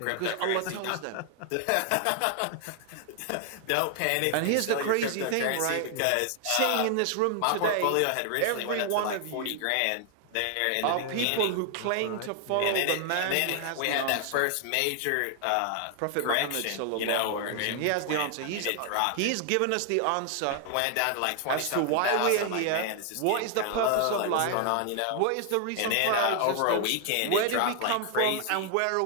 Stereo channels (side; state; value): both; different; correlation 0.00